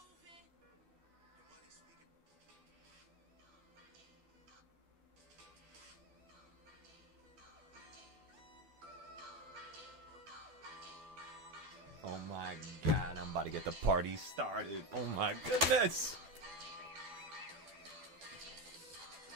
Oh my god, I'm about to get the party started. Oh my goodness!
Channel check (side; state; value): left; late; 12 ms